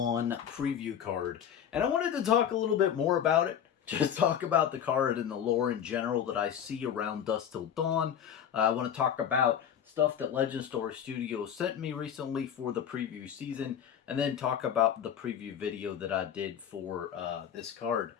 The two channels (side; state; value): right; quieter; 9.0 dB